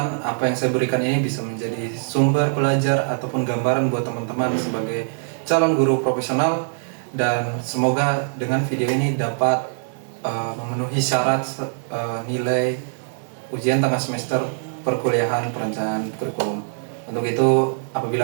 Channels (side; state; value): left; silent; digital silence